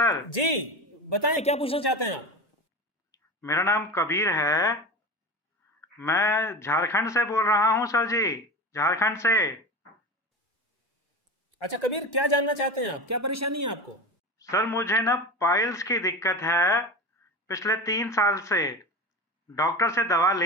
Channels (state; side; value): normal; both; correlation 0.27